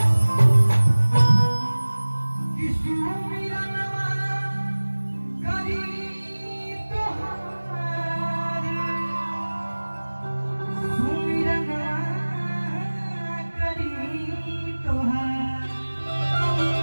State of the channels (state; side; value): inverted; both; correlation -1.00